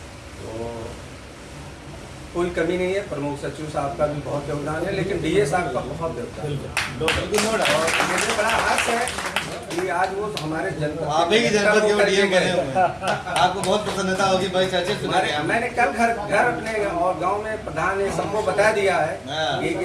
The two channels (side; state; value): both; identical; correlation 1.00